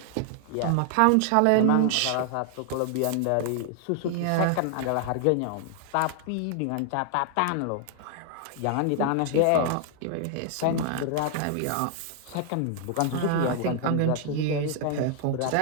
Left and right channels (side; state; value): both; different; correlation 0.00